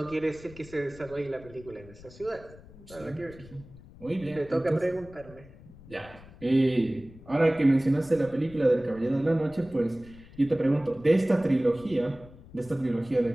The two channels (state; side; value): noise; left; rumble, 20 dB below the sound